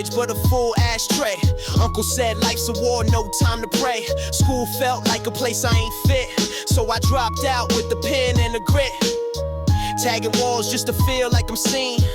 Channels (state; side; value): identical; both; correlation 1.00